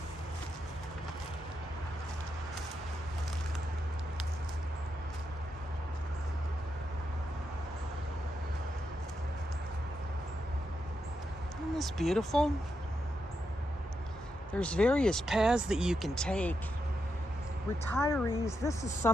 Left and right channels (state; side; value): normal; both; correlation 0.84